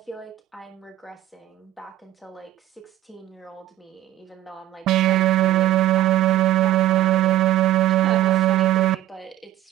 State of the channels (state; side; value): quieter; left; 13.7 dB